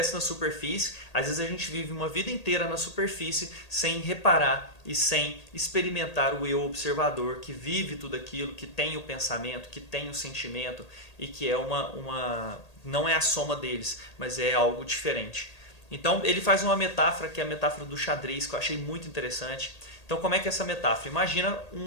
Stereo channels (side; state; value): right; late; 1.8 ms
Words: na superfície. Às vezes a gente vive uma vida inteira na superfície sem reparar e sem experimentar o eu observador, que vive tudo aquilo, que tem o pensamento, que tem o sentimento e que é não é a soma deles, mas é algo diferente. Então ele faz uma metáfora, que é a metáfora do xadrez, que eu achei muito interessante. Então como é que é essa metáfora? Imagina